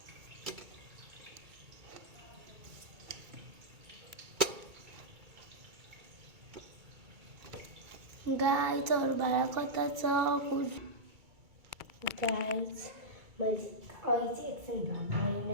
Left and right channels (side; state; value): left; late; 2.3 ms